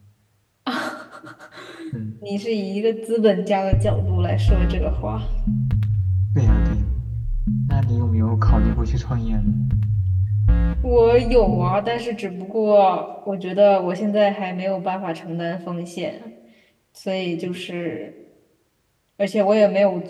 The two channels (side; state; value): both; identical; correlation 1.00